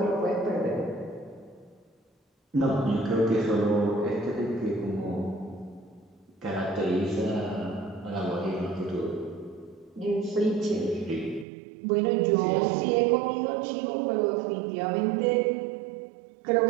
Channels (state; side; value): drops out; left; at 11.5 s